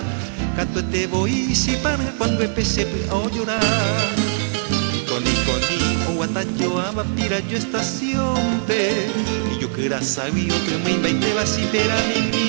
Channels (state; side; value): silent; left; 65 dB below the other